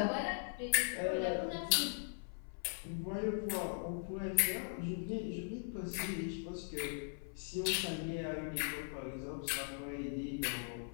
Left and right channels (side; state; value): right; silent; 51 dB below the other